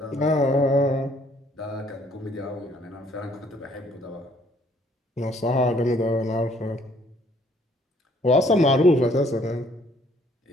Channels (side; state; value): both; normal; correlation 0.63